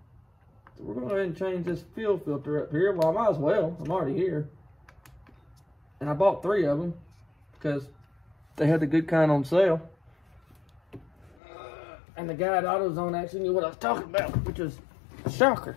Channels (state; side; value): drops out; right; at 11.4 s